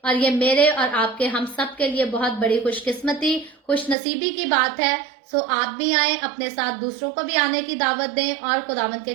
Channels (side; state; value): left; drops out; at 4.0 s